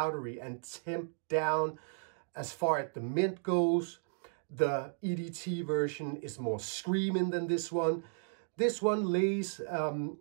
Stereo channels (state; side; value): silent; left; digital silence